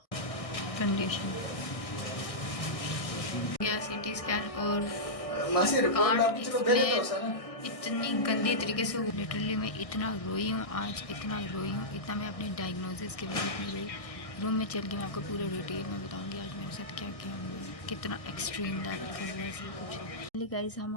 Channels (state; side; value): late; right; 1.6 ms